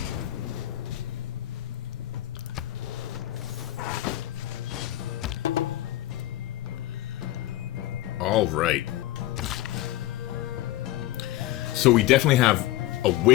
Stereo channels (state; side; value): quieter; right; 15.2 dB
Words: All right. So we definitely have a